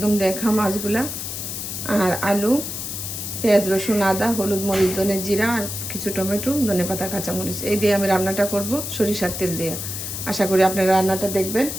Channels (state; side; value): noise; left; hiss, 6 dB below the sound